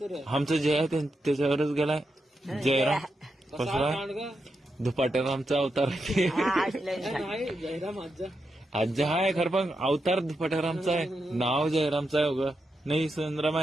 तर. आमचं जय आहे त्याच्यावरच गेलाय. जयराम कसला दुपाट्यात आमचा अवतार आहे. नाही जयराम आजा. आज्जा हाय खरं पण अवतार दुपाट्यारामचा आहे. नाव जयरामचं आहे उगा नाही सुंदरम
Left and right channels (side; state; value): both; normal; correlation 0.86